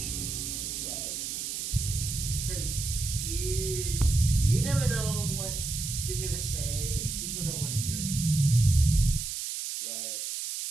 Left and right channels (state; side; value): noise; right; hiss, 4 dB below the sound